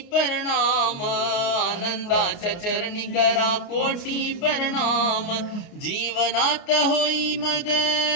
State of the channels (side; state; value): right; late; 29 ms